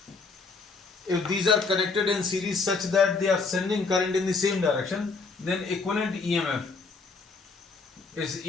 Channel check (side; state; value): right; quieter; 4.3 dB